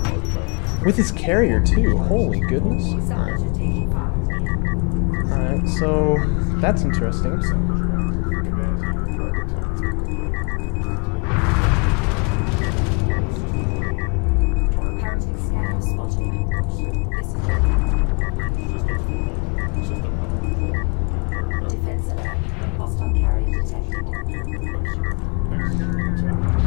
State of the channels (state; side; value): quieter; right; 32.7 dB